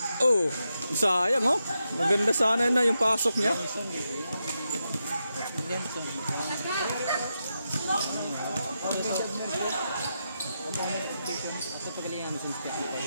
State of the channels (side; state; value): both; inverted; correlation -0.86